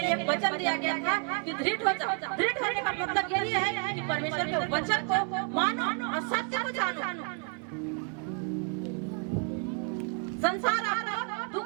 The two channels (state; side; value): quieter; left; 38.9 dB